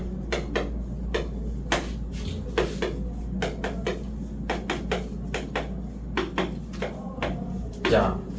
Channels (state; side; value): identical; both; correlation 1.00